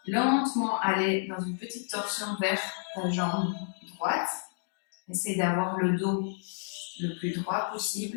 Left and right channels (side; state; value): right; silent; 57 dB below the other